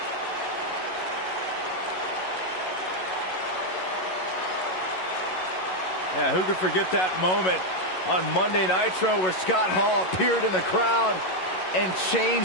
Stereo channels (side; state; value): right; late; 11 ms